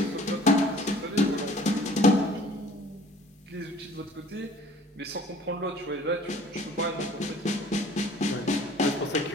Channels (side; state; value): both; normal; correlation 0.51